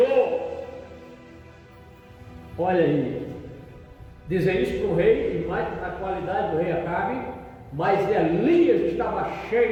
Olha aí, dizer isso para o rei, e mais na qualidade do rei Acabe, mas Elias estava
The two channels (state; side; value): identical; both; correlation 1.00